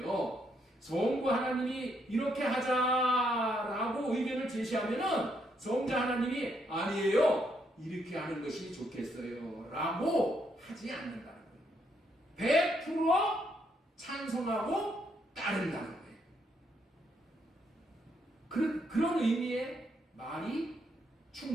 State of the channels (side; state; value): both; normal; correlation 0.75